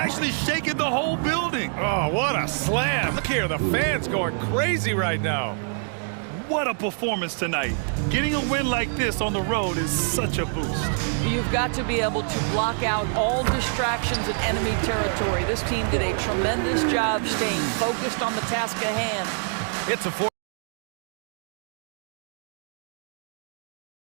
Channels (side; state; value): left; silent; 56 dB below the other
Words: shaking the whole building. Oh, what a slam. Look here, the fans going crazy right now. What a performance tonight. Getting a win like this on the road is such a boost. You've got to be able to block out all distractions in enemy territory. This team did a tremendous job staying focused on the task at hand. It's a 4.